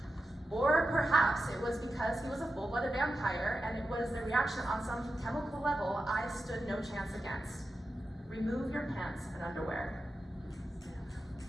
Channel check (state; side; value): normal; both; correlation 0.90